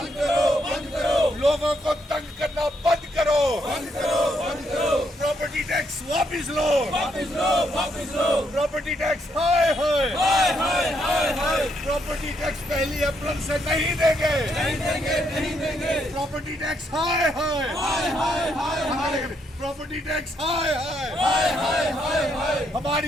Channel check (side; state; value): both; normal; correlation 0.75